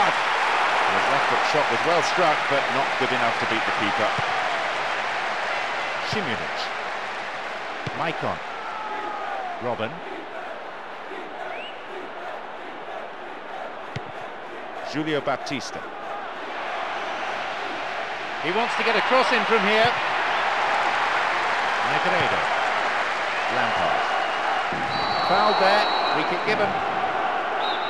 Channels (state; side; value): identical; both; correlation 1.00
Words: His left foot shot was well struck, but not good enough to beat the keeper. Šimunić. Maicon. Robben. Julio Baptista. He wants to get a cross in from here. Negredo. Lampard. Fouled there. Free kick given.